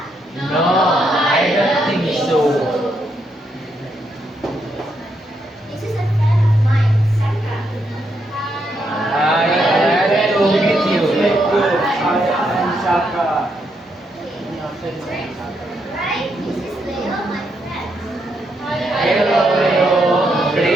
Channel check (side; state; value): both; normal; correlation 0.78